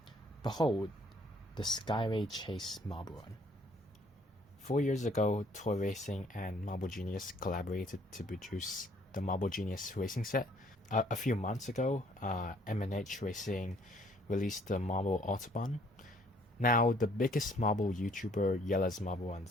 Behold, the Skyway Chase marble one. 4 years ago, Toy Racing and Marble Genius collaborated to produce the Marble Genius racing set. A few months ago, M&H Racing released the Marble Autobahn. Now, the biggest marble YouTuber, Jelle's Marble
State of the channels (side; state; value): both; normal; correlation 0.61